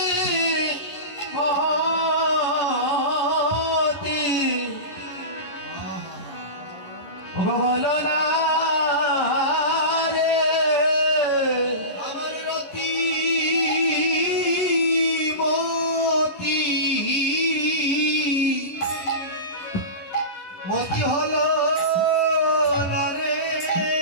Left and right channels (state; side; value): late; right; 11 ms